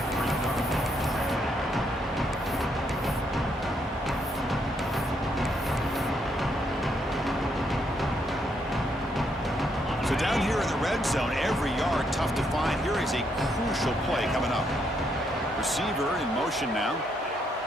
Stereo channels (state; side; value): normal; both; correlation 0.75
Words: So down here in the red zone, every yard tough to find. Here is a crucial play coming up. Receiver in motion now.